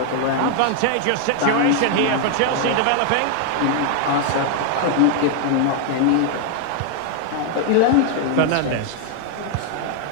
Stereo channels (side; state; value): both; different; correlation 0.00